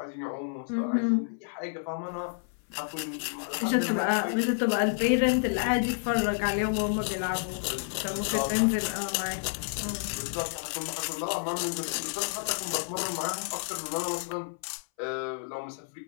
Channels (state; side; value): silent; right; 58 dB below the other